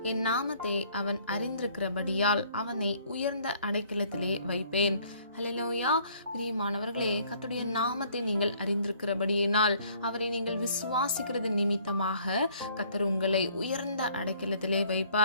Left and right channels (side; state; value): both; inverted; correlation -0.60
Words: என் நாமத்தை அவன் அறிந்திருக்கிறபடியால் அவனை உயர்ந்த அடைக்கலத்திலே வைப்பேன். ஹல்லேலூயா. பிரியமானவர்களே, கர்த்தருடைய நாமத்தை நீங்கள் அறிந்திருக்கிறபடியினால், அவரை நீங்கள் விசுவாசிக்கிறது நிமித்தமாக கர்த்தர் உங்களை உயர்ந்த அடைக்கலத்திலே